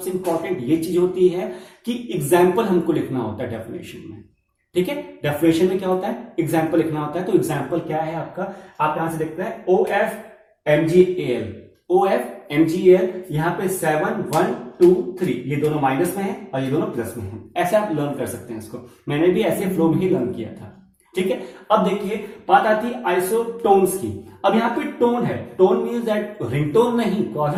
इंपॉर्टेंट ये चीज होती है कि एग्जाम्पल हमको लिखना होता है डेफिनेशन में। ठीक है, डेफिनेशन में क्या होता है, एग्जाम्पल लिखना होता है। तो एग्जाम्पल क्या है आपका, आप यहां से देखते हैं OF MgAl, यहां पे 7 1 2 3, ये दोनों माइनस में है और ये दोनों प्लस में है। ऐसे आप लर्न कर सकते हैं इसको, मैंने भी ऐसे फ्लो में ही लर्न किया था। ठीक है, अब देखिए बात आती है आइसोटोन्स की। अब यहाँ पे टोन है, टोन मीन्स दैट रिंगटोन नहीं,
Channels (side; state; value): both; identical; correlation 1.00